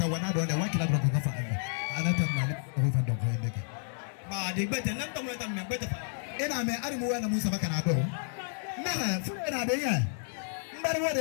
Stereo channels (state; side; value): silent; right; digital silence